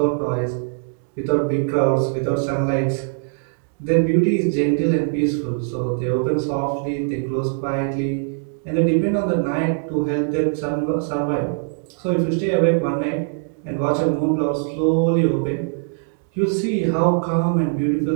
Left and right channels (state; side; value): silent; left; digital silence